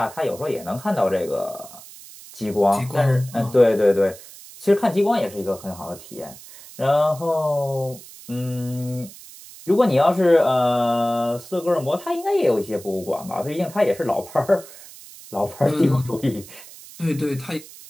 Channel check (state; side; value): noise; right; hiss, 18 dB below the sound